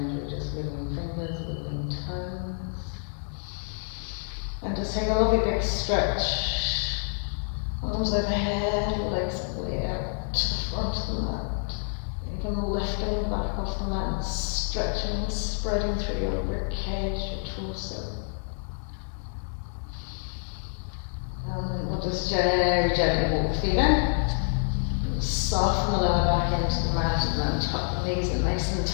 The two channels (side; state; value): right; silent; 59 dB below the other